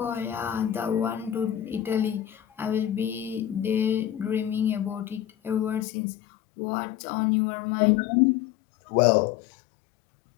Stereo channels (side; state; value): right; drops out; at 5.9 s